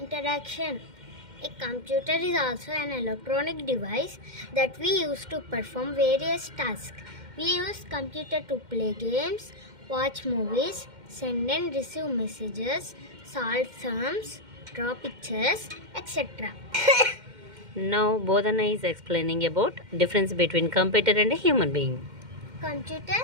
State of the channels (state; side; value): late; left; 2.1 ms